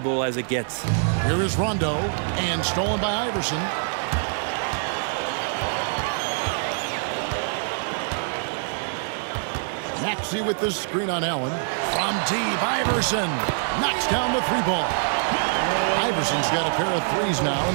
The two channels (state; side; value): silent; left; 62 dB below the other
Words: as it gets. Here is Rondo, and stolen by Iverson. Maxey with the screen on Allen. From deep, Iverson knocks down the three ball. Iverson's got a pair of threes now